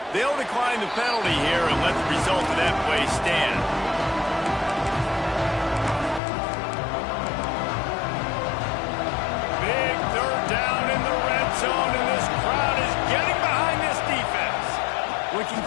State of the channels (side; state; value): right; drops out; at 6.2 s